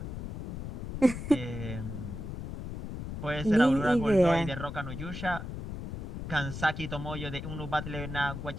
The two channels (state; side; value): noise; left; rumble, 6 dB below the sound